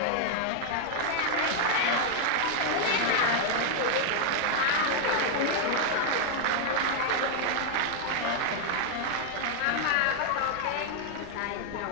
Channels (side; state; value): both; different; correlation 0.00